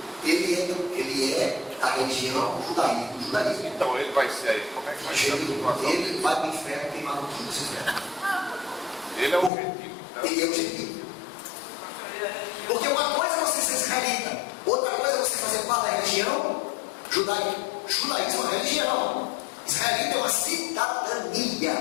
Ele é a religião judaísmo. Então ele vai ser, como é que vai ser a situação? Ele vai para o inferno queimado tudo esse inferno. Ele é o gentil. Então, Ele é o gentil. Porque uma coisa é você ser israelita, outra coisa é você fazer parte da religião judaica. Judaísmo é uma religião. Israelita é uma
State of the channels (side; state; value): right; drops out; at 9.5 s